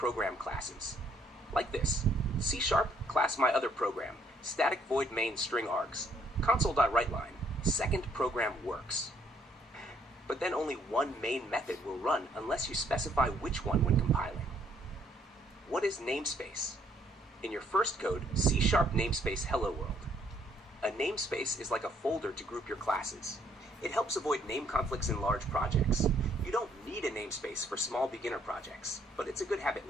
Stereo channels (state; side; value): normal; both; correlation 0.67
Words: classes. Like this, C# class my other program, static void main string args, console.writeline, second program works. But then only one main method will run unless you specify which one when compiling. What is namespace? In your first code, C# namespace hello world. A namespace is like a folder to group your classes. It helps avoid name conflicts in large projects. You don't need a namespace for small beginner projects, but it's a good habit